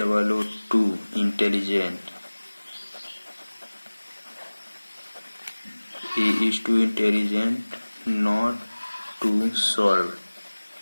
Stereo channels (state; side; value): inverted; both; correlation -1.00